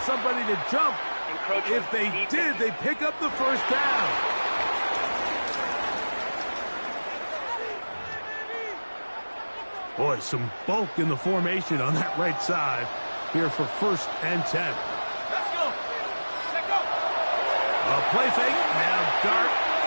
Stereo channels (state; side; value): inverted; both; correlation -1.00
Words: somebody to jump. If they did, they pick up the 1st down. Boy, some bulk in the formation on that right side here for 1st and 10. Let's go. A play fake, now dart.